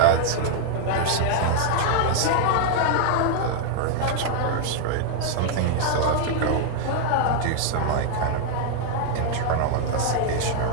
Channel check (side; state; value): both; different; correlation 0.00